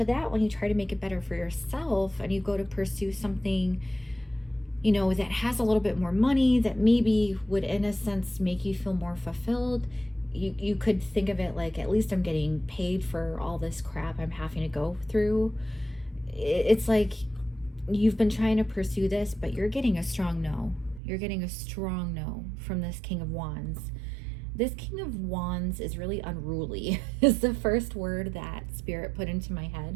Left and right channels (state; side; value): drops out; left; at 21.0 s